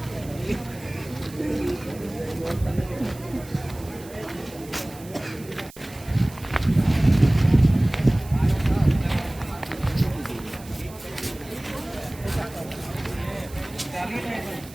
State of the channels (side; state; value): right; noise; hiss, 20 dB below the sound